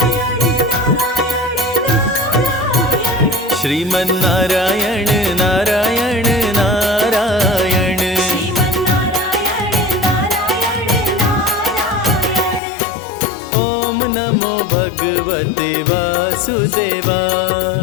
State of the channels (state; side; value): drops out; right; at 12.6 s